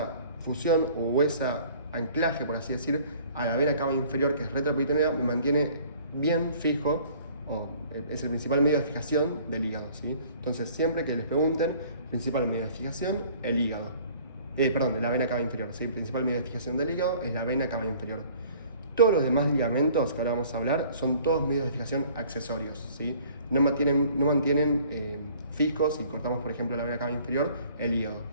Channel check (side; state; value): both; inverted; correlation -0.53